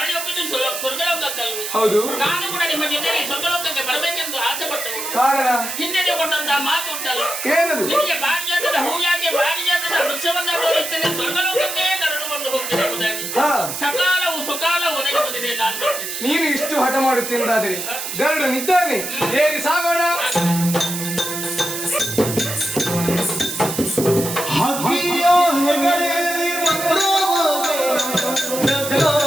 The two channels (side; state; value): right; noise; hiss, 5 dB below the sound